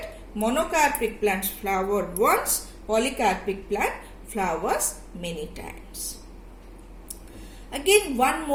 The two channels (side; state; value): both; identical; correlation 1.00